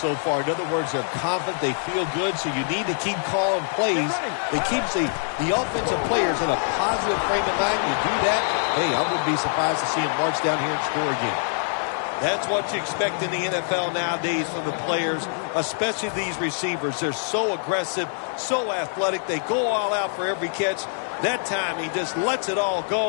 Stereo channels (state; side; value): silent; right; 62 dB below the other